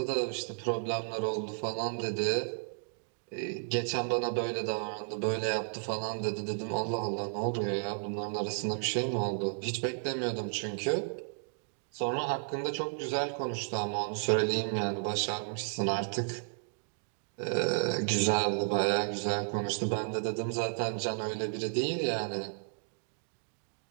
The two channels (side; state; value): left; silent; digital silence